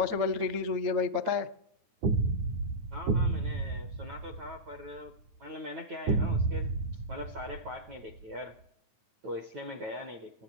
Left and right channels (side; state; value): left; late; 9.3 ms